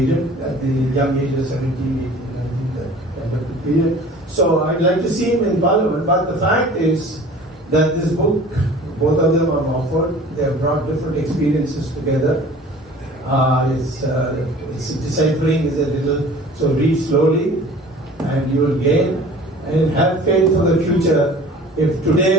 at the young age of 17, 18, 19, that kind of period. So I'd like to see him in Parliament, but the fact is that this book, both of them are offered. They have brought different experiences together. It's deciphering is a little, so read slowly and you will gain. And have faith for the future. If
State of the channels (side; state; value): both; normal; correlation 0.45